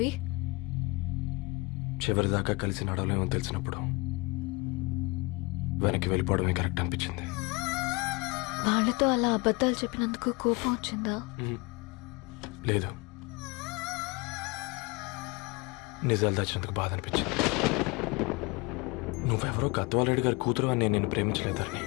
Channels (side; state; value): right; quieter; 26.0 dB